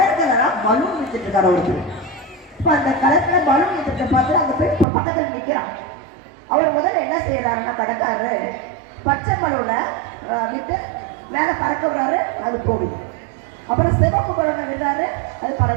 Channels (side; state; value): left; drops out; at 4.9 s